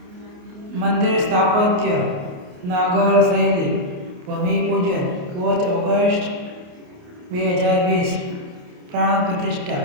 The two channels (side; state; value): left; late; 28 ms